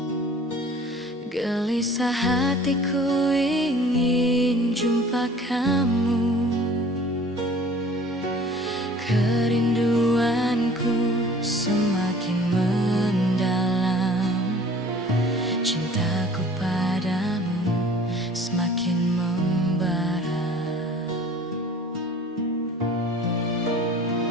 gelisah hatiku ingin jumpa kamu. Kerinduanku semakin mendalam, cintaku padamu semakin membara.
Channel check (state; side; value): normal; both; correlation 0.48